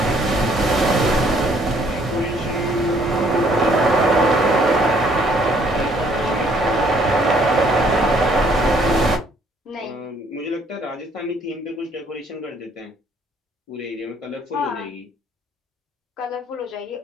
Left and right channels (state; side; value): normal; both; correlation 0.63